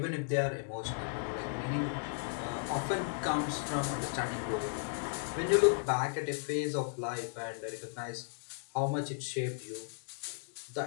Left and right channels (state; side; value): silent; right; digital silence